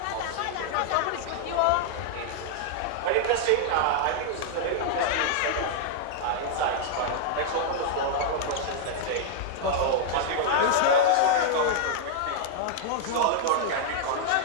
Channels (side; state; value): both; different; correlation -0.01